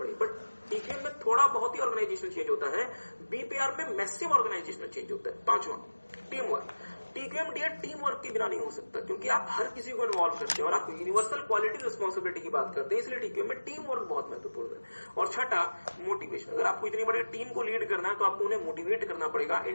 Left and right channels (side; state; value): both; inverted; correlation -1.00